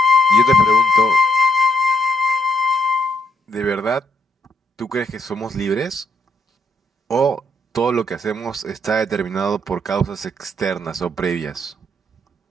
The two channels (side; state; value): both; normal; correlation 0.74